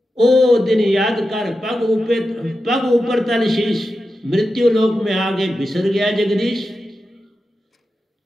ओ दिन याद कर, पग ऊपर तल शीश। मृत्यु लोक में आगे बिसर गया जगदीश।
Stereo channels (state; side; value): normal; both; correlation 0.90